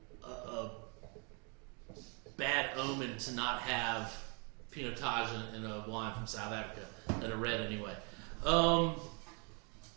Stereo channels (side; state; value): left; quieter; 35.1 dB